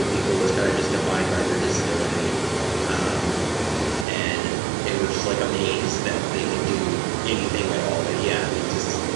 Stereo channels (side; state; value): left; drops out; at 4.0 s